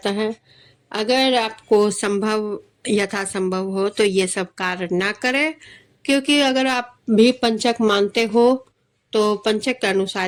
है। अगर आपको यथा संभव हो तो ये सब कार्य ना करें, क्योंकि अगर आप भी पंचक मानते हो तो पंचक के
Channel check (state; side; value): identical; both; correlation 1.00